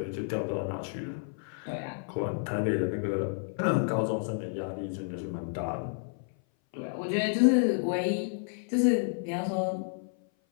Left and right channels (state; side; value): silent; right; 57 dB below the other